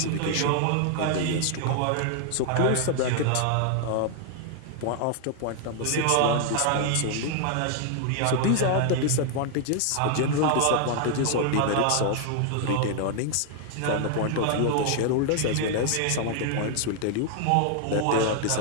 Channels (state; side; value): different; both; correlation 0.00